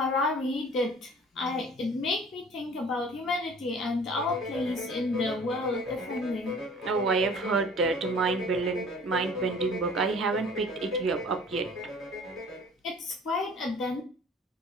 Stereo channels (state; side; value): normal; both; correlation 0.48